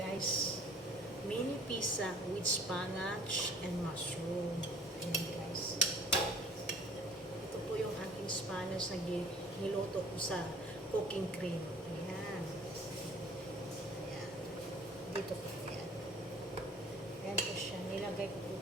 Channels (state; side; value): normal; both; correlation 0.51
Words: Mini pizza with spinach and mushroom. Ayan, guys. Ito po yung aking spinach na niluto ko sa cooking cream. Ayan. Ayan. Dito po. Ayan. Ayan po siya. Nilagay ko po